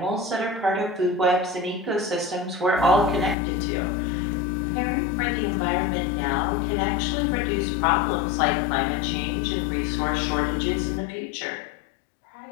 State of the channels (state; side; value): drops out; right; at 3.4 s